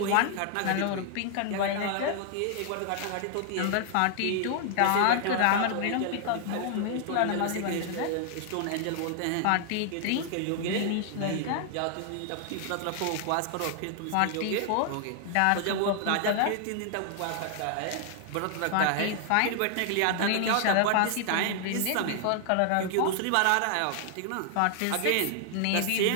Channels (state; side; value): different; both; correlation 0.00